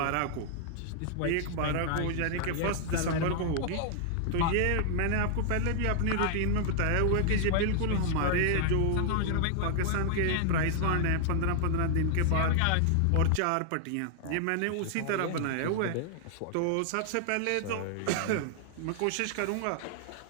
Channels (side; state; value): both; different; correlation 0.00